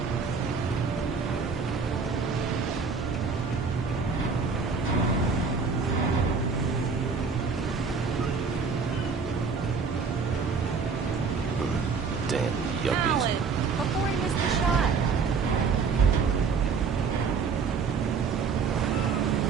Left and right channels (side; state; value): left; quieter; 5.3 dB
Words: he missed the shot.